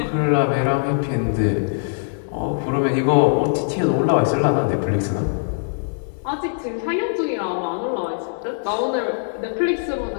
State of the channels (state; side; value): silent; right; digital silence